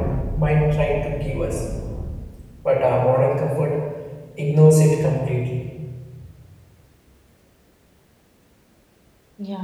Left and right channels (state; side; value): identical; both; correlation 1.00